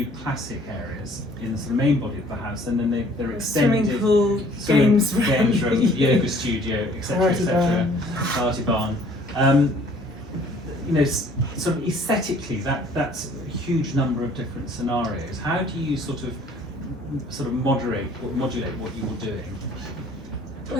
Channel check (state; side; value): normal; both; correlation 0.56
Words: classic areas in the sort of main body of the house, and then they're extended. Swimming pool, games room, yoga studio, etc., etc., party barn. Sort of aesthetically, that's a huge number of different scenarios. How do you sort of modulate what you're doing?